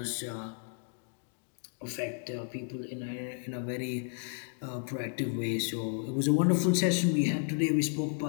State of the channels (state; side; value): silent; right; 56 dB below the other